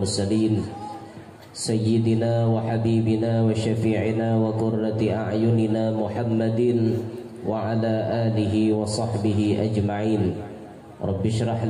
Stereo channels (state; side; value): identical; both; correlation 1.00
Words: Sayyidina wa habibina wa syafi'ina wa qurrati a'yunina Muhammadin wa ala alihi wa sahbihi ajma'in. Rabbi shrah